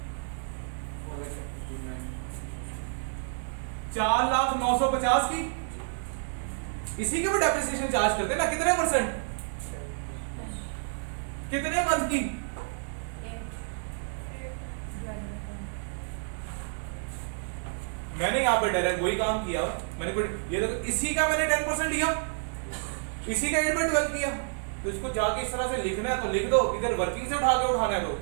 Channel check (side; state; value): left; silent; digital silence